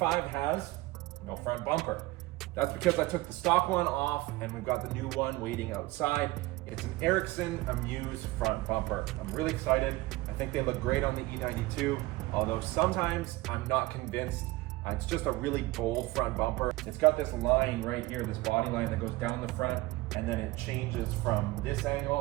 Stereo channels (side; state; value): left; quieter; 19.9 dB